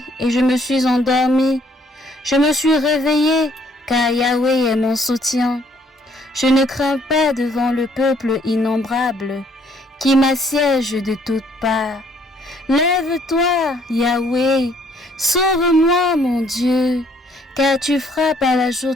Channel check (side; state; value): both; normal; correlation 0.64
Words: et je me suis endormi. Je me suis réveillé, car Yahweh est mon soutien. Je ne crains pas devant le peuple innombrable, qui m'assiège de toutes parts. Lève-toi, Yahweh, sauve-moi, mon Dieu, car tu frappes à la joue